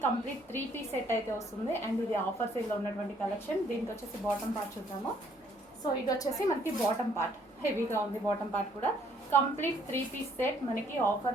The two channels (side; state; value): both; normal; correlation 0.65